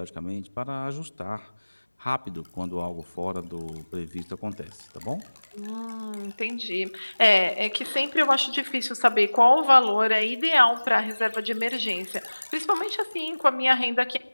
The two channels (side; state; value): both; inverted; correlation -1.00